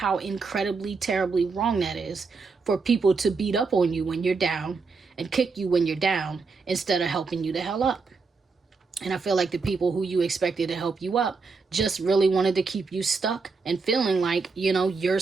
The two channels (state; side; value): quieter; left; 4.5 dB